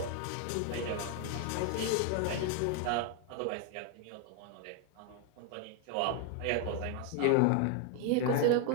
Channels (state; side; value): different; both; correlation 0.01